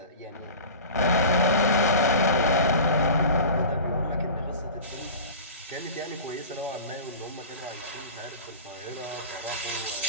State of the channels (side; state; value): both; inverted; correlation -0.36